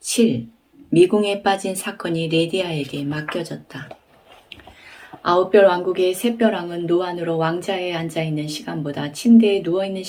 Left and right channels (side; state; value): both; identical; correlation 1.00